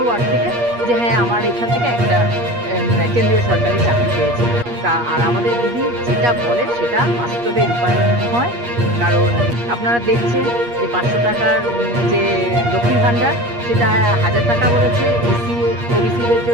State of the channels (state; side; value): late; left; 8.4 ms